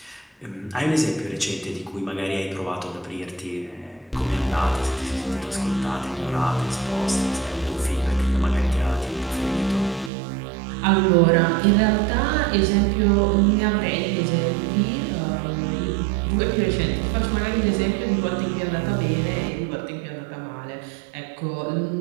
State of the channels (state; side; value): drops out; left; at 10.1 s